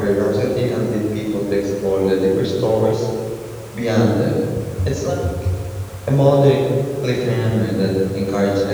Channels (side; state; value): both; identical; correlation 1.00